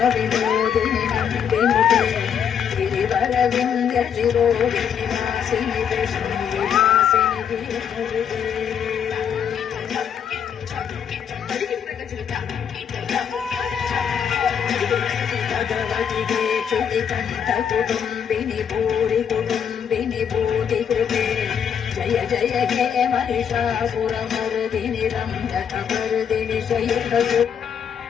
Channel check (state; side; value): quieter; right; 7.9 dB